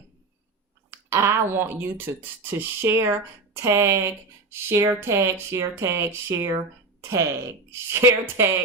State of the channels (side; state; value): left; quieter; 3.7 dB